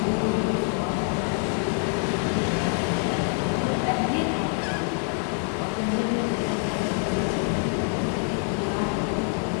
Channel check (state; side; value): quieter; right; 39.2 dB